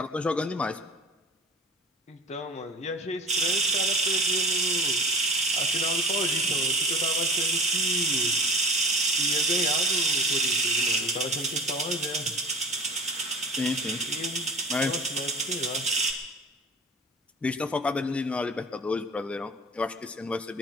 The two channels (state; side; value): normal; both; correlation 0.37